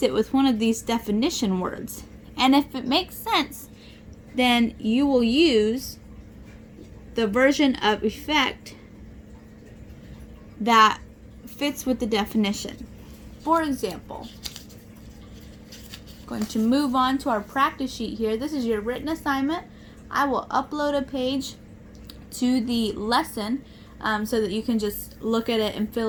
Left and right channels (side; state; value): both; identical; correlation 1.00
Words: it with one of these definition words. And if it makes sense, then you will use the version of effect that fits with the definition. For example, I'm going to move on to our practice sheet here. This is your written assignment. I will upload a page to the lesson so that you can just look at it and